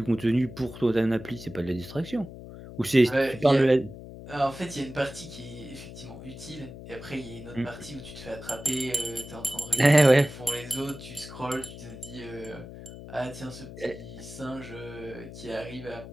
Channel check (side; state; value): left; noise; hum, 13 dB below the sound